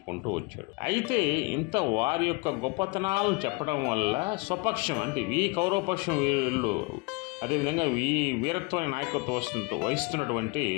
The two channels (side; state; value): right; quieter; 27.5 dB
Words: వచ్చాడు. అయితే ఇంత వారి యొక్క గొప్పతనాలను చెప్పడం వల్ల స్వపక్షం అంటే ఈ కౌరవపక్షం వీళ్ళు అదేవిధంగా ఈ వీరత్వాన్ని నాయకత్వం వహిస్తున్నటువంటి